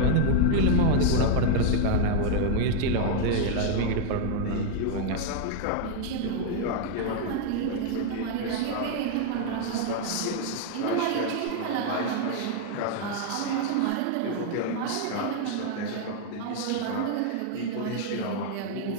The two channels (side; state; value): both; different; correlation 0.00